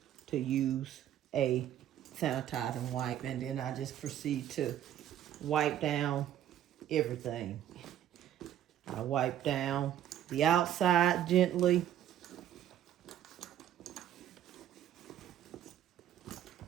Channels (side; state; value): left; quieter; 11.2 dB